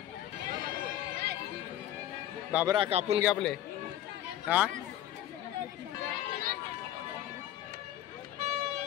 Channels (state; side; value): quieter; right; 12.3 dB